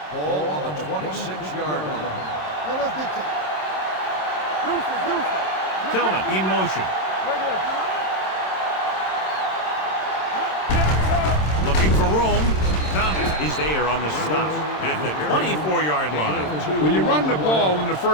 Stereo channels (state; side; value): late; right; 26 ms